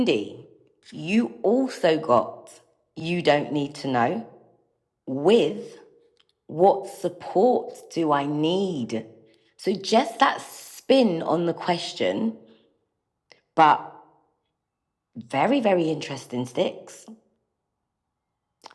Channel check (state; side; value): identical; both; correlation 1.00